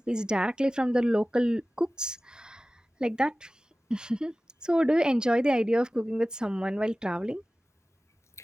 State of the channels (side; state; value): both; normal; correlation 0.97